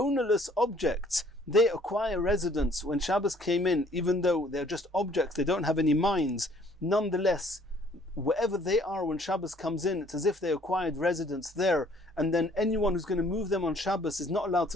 objects, they acquire residence when Shabbos came in, even though they're just objects, they don't have any minds. Nonetheless, wherever they are when Shabbos comes in, it's as if they acquired residence there, and then anyone who's going to move them on Shabbos is not allowed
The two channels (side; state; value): both; normal; correlation 0.59